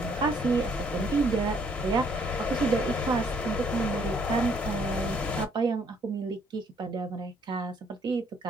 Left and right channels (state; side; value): normal; both; correlation 0.66